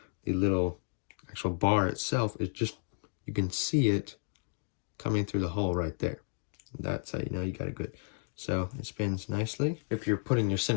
the little actual bar itself is just, you can see it coming through the hole right there. That's how you know you got a good So it spins nicely. If you're putting your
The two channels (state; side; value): silent; right; digital silence